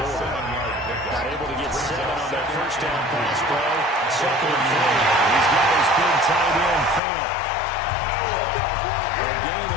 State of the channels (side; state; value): right; drops out; at 7.0 s